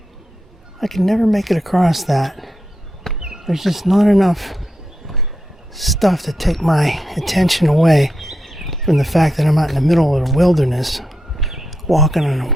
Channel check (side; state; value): both; normal; correlation 0.85